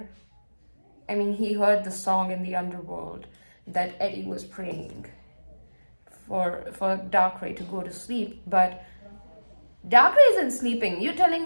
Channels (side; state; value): both; inverted; correlation -1.00